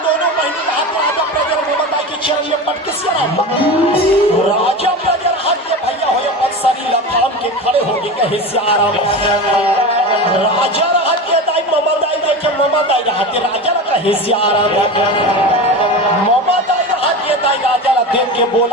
राजा प्रजर हाथ के भैया हो अक्सरी लखाम के खड़े हो गए हिस्सा आराम राजा रहा के दाई ममा दाई देखे ममा दाई रहा के राजा का हिस्सा आराम ममा दाई रहा के दाई राजा ला देख के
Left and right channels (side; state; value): both; normal; correlation 0.27